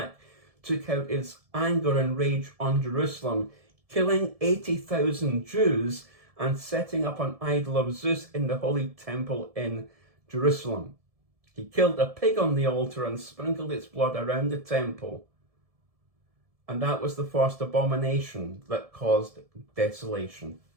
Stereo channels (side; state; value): left; late; 1.7 ms